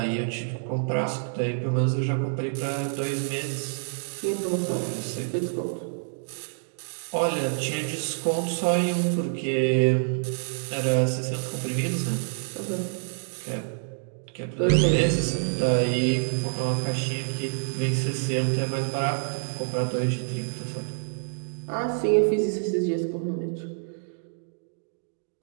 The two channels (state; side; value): silent; left; digital silence